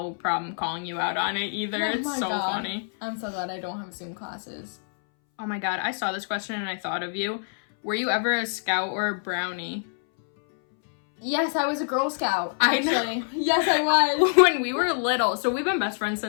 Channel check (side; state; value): right; silent; 61 dB below the other